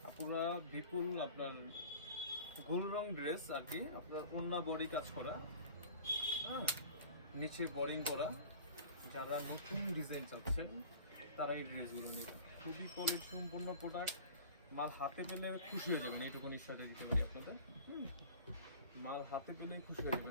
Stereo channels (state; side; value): inverted; both; correlation -0.41